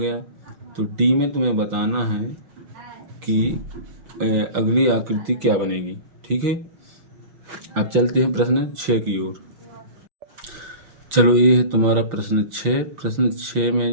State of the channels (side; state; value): left; late; 5.9 ms